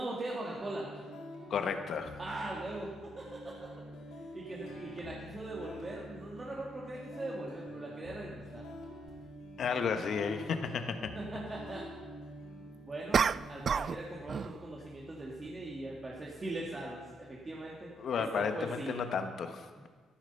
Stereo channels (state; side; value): normal; both; correlation 0.75